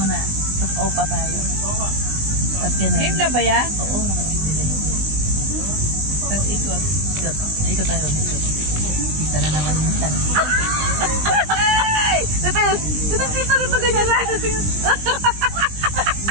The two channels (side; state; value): left; late; 20 ms